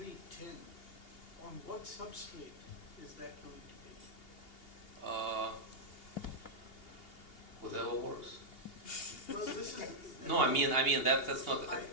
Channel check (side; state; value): right; late; 2.8 ms